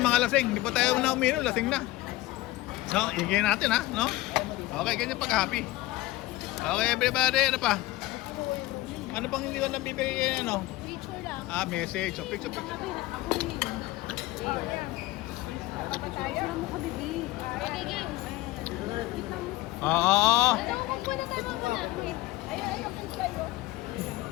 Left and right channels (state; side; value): quieter; right; 18.3 dB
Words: lasing. Hindi pa tayo na uminom, lasing na. No, igay natin, ha? No? Okay, ganyan pag happy. Okay, everybody. Ano pa? Ano pang hindi ko nabibigay, ano? Picture lang. Ah, message. So, picture. Ako rin. Tayo mo ka, bibi. Okay, games. Oo. Ano, magpuna tayo muna. Wait. Ayun, kayo.